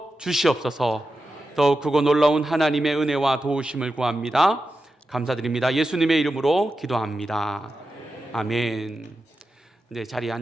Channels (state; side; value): normal; both; correlation 0.90